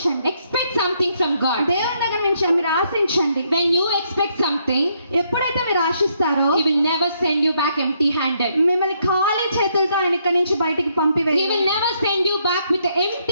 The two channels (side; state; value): both; inverted; correlation -0.73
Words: Expect something from God. దేవుని దగ్గర నుంచి మీరు ఆశించండి. When you expect something, ఎప్పుడైతే మీరు ఆశిస్తారో He will never send you back empty-handed. మిమ్మల్ని ఖాళీ చేతులతో ఆయన ఇక్కడి నుంచి బయటికి He పంపివేయరు. will never send you back with an